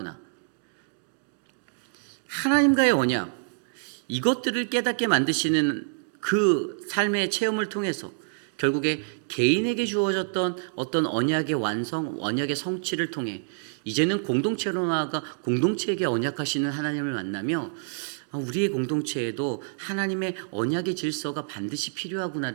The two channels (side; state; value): left; silent; digital silence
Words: 하나님과의 언약, 이것들을 깨닫게 만드시는 그 삶의 체험을 통해서 결국에 개인에게 주어졌던 어떤 언약의 완성, 언약의 성취를 통해 이제는 공동체로 나아가 공동체에게 언약하시는 하나님을 만나며 우리의 공동체에도 하나님의 언약의 질서가 반드시